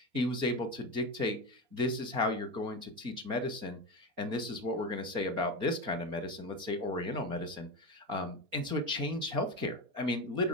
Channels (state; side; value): late; left; 4.3 ms